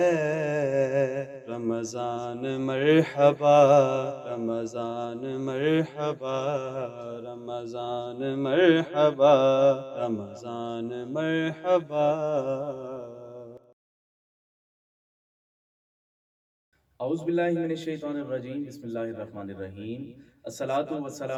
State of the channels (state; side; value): identical; both; correlation 1.00